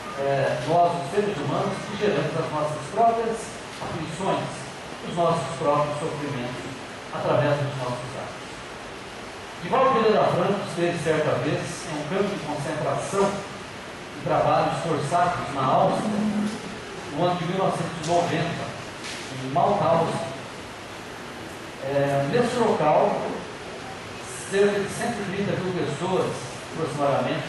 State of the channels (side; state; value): both; identical; correlation 1.00